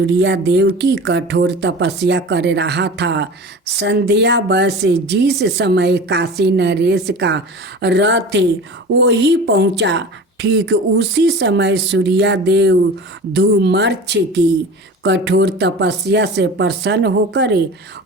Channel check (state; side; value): normal; both; correlation 0.35